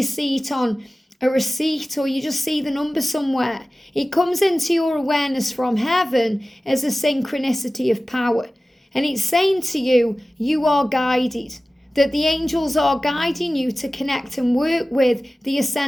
see it on a receipt, or you just see the number somewhere, it comes into your awareness from heaven as a synchronicity of power. And it's saying to you, you are guided, that the angels are guiding you to connect and work with the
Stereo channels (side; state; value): both; normal; correlation 0.96